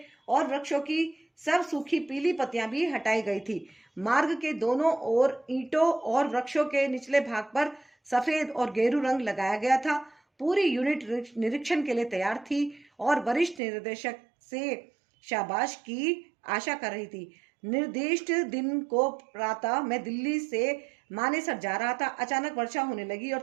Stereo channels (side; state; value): left; drops out; at 13.6 s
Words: और वृक्षों की सब सूखी पीली पत्तियां भी हटाई गई थी। मार्ग के दोनों ओर ईंटों और वृक्षों के निचले भाग पर सफेद और गेरू रंग लगाया गया था। पूरी यूनिट निरीक्षण के लिए तैयार थी और वरिष्ठ निर्देशक से शाबाश की आशा कर रही थी। निर्दिष्ट दिन को प्रातः मैं दिल्ली से मानेसर जा रहा था। अचानक वर्षा होने लगी और